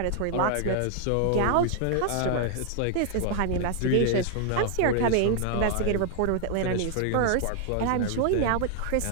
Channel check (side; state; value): both; different; correlation 0.00